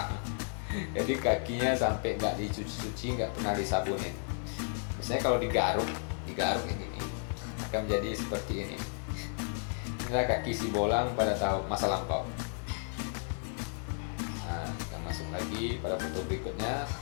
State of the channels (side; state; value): right; silent; 56 dB below the other